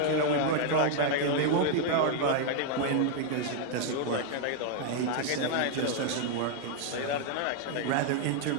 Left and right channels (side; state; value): both; different; correlation 0.00